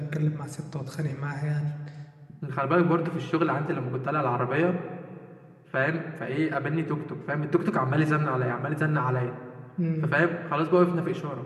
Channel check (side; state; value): both; identical; correlation 1.00